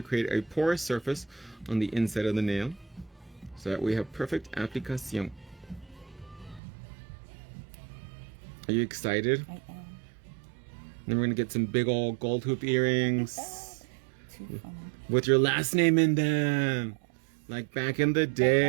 create a porous surface on the inside of the nail so that we have perfect application. Are you excited? I am. Then we're going to get some big old gold hoop earrings Too funny. with your last name in them. Like back in the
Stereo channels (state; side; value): drops out; left; at 6.6 s